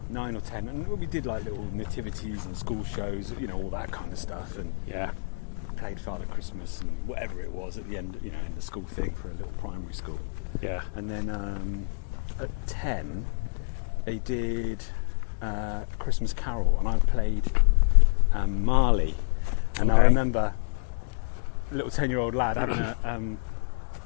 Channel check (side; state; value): right; silent; digital silence